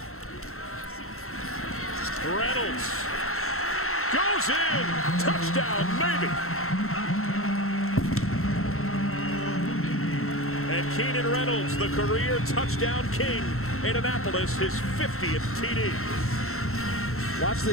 Reynolds goes in. Touchdown, maybe. And Keenan Reynolds, the career touchdown king in Annapolis, his 50th TD. Watch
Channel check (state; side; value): late; right; 0.63 ms